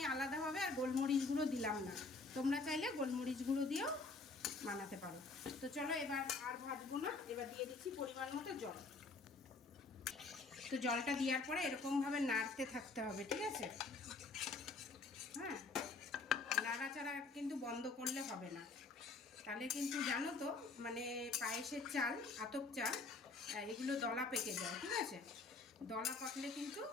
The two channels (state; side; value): quieter; right; 3.8 dB